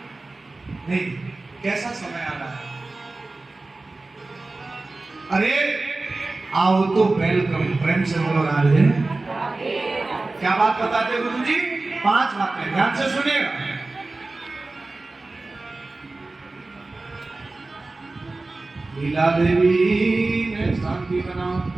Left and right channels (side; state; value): left; quieter; 3.3 dB